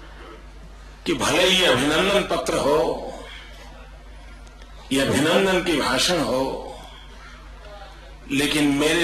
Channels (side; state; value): both; identical; correlation 1.00